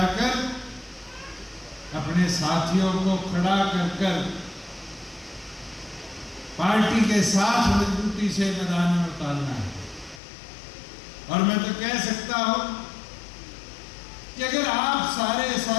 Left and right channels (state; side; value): drops out; right; at 10.2 s